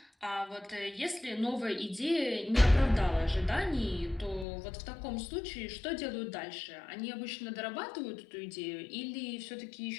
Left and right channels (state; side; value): drops out; right; at 4.5 s